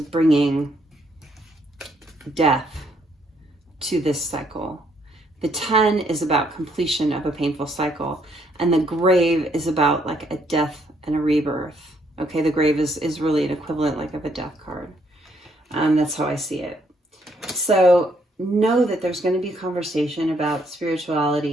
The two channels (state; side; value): normal; both; correlation 0.71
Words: death to this cycle. The 10 is about completion of a painful cycle, and the Grave is about like a death and a rebirth. Okay, the Grave is really an equivalent like of a death card. That's how I see it. So know that there's going to be a conversation about